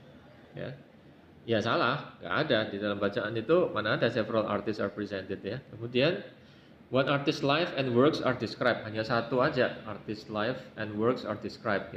Ya, salah, nggak ada di dalam bacaan itu, mana ada several artists are presented, ya. Kemudian one artist life and works are described, hanya satu aja, artist life and works are described,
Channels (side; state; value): both; identical; correlation 1.00